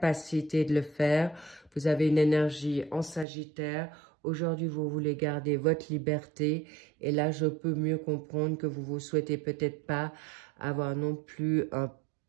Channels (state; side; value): drops out; left; at 3.2 s